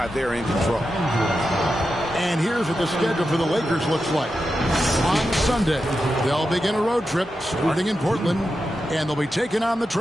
they're in control. And here's what the schedule for the Lakers looks like. On Sunday, they'll begin a road trip starting in Portland, and they'll be taking on the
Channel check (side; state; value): both; normal; correlation 0.89